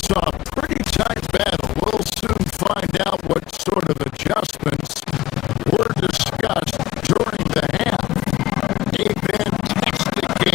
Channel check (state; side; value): quieter; right; 16.2 dB